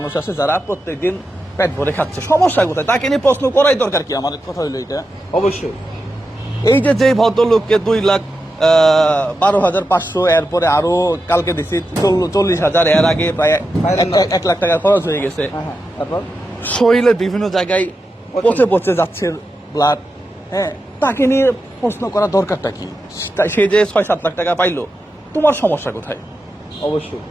আছে যারা প্রত্যেকদিন পেট ভরে খাচ্ছে, সমস্যা কোথায়? তাকে নিয়ে প্রশ্ন করাই দরকার কি? আমার কথা হইলো এটা। অবশ্যই। এই যে যেই ভদ্রলোককে 2,12,500, এরপরে আরো কালকে দিছি 40,000, এর আগে প্রায় 1 লাখ টাকা খরচ হয়ে গেছে। তারপর শরীরের বিভিন্ন জায়গায় পচে পচে যাচ্ছে ব্লাড, হ্যাঁ, তাকে নিয়ে প্রশ্ন করা দরকারটা কি? সে যে 6-7 লাখ টাকা পাইলো, তোমার সমস্যা কোথায়? অবশ্যই।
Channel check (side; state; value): both; normal; correlation 0.89